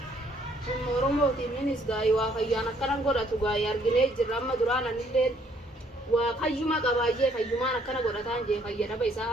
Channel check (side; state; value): both; normal; correlation 0.65